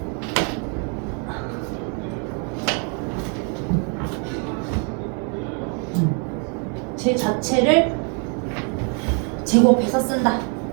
제 자체를 제곱해서 쓴다.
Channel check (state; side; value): quieter; left; 38.8 dB